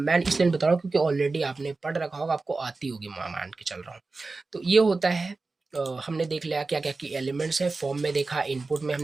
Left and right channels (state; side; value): quieter; left; 3.7 dB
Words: इसलिए नहीं बता रहा हूँ क्योंकि ऑलरेडी आपने पढ़ रखा होगा, आपको आती होगी, मान के चल रहा हूँ। तो ये होता है हमने देख लिया क्या क्या की एलिमेंट्स है, फॉर्म में देखा, इनपुट में